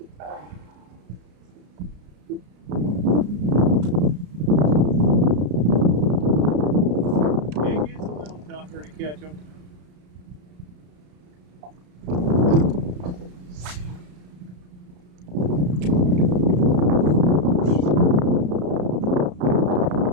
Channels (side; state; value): left; late; 33 ms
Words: It gets a little tougher to catch them.